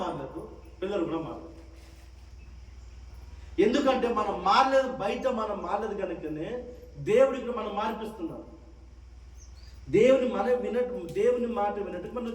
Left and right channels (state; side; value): identical; both; correlation 1.00